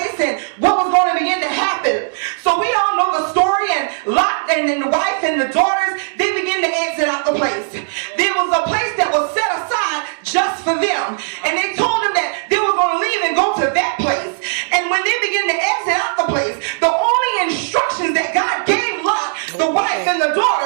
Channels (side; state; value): left; silent; digital silence